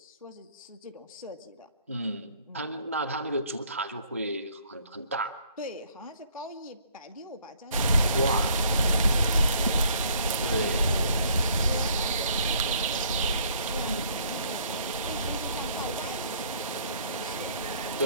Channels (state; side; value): inverted; both; correlation -0.61